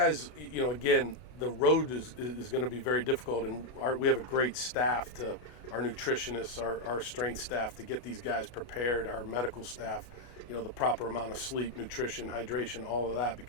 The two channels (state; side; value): late; right; 33 ms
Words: again, the road is going to be very difficult, and we have a great staff, our nutritionists, our strength staff, to get these guys prepared, our medical staff, the proper amount of sleep, nutrition, hydration, all of that,